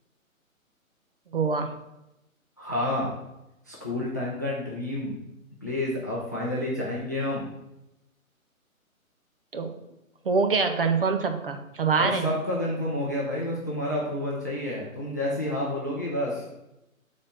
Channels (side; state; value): both; normal; correlation 0.05